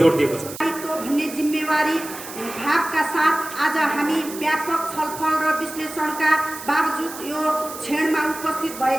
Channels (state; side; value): noise; right; hiss, 12 dB below the sound